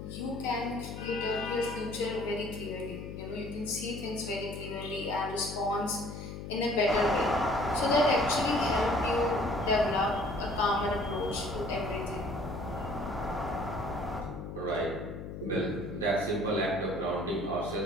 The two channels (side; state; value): left; noise; hum, 9 dB below the sound